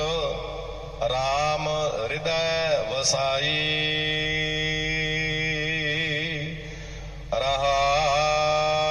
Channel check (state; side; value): identical; both; correlation 1.00